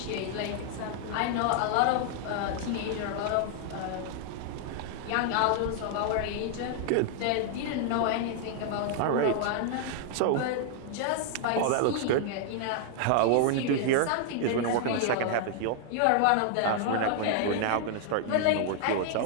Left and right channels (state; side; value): different; both; correlation -0.01